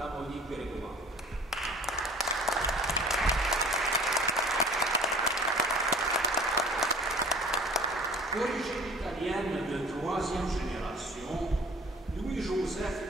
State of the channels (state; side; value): normal; both; correlation 0.47